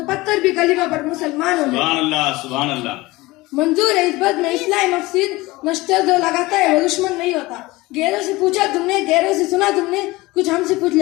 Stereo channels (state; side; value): quieter; right; 20.7 dB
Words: पत्थर भी कलीमा पर मुसलमान हो गए। सुभान अल्लाह, सुभान अल्लाह। मंजूर है इस बात में इस्लाम मफसीद नश्तर जो लगाता है वो दुश्मन नहीं होता। गैरों से पूछा तुमने, गैरों से सुना तुमने, कुछ हमसे पूछ